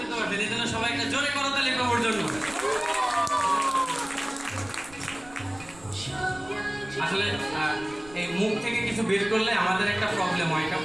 দিতে পারবেন, এই জন্য সবাইকে জোরে করতালি প্রভুর জন্য। আসলে এই মুখ থেকে কিছু বের করলে আমাদের একটা প্রবলেম হয়, এটা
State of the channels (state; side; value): noise; right; rumble, 22 dB below the sound